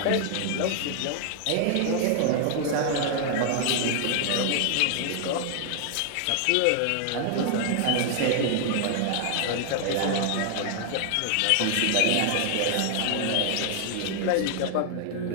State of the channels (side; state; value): both; different; correlation 0.00